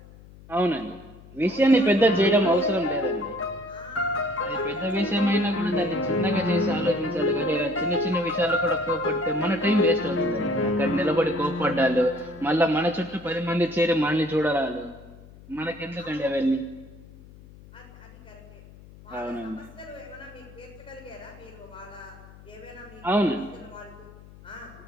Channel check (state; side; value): noise; left; hum, 21 dB below the sound